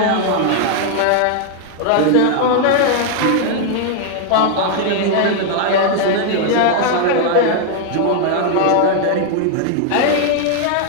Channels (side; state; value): both; different; correlation 0.00